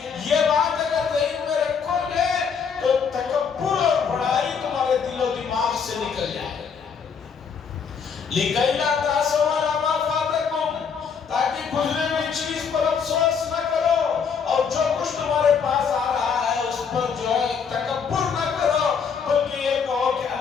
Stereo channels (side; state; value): right; quieter; 6.3 dB